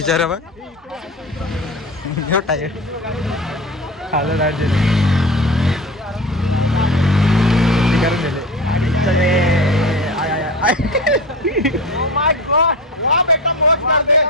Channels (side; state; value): both; normal; correlation 0.30